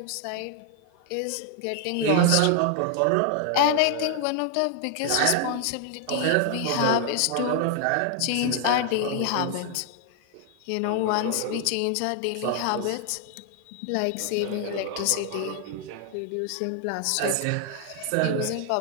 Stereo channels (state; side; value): different; both; correlation 0.00